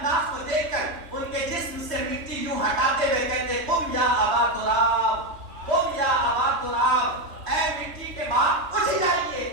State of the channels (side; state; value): left; late; 3.3 ms